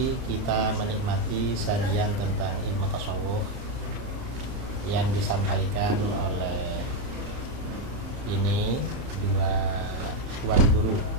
kita menikmati sajian tentang ilmu tasawuf yang disampaikan oleh ini dua tuan guru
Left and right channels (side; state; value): left; late; 31 ms